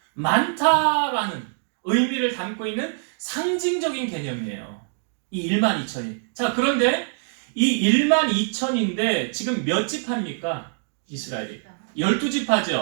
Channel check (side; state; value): left; silent; digital silence